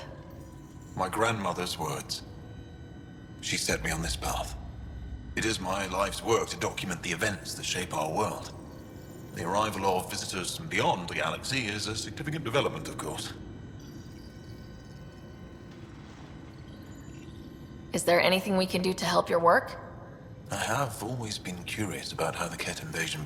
My grandmother's words. She set me on this path. It is my life's work to document the events that shape our world. The arrival of visitors from beyond the galaxy is a significant development, of course. Is there anything we can do to help your work? I have always been curious about how the Ket invasion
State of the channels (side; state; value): both; identical; correlation 1.00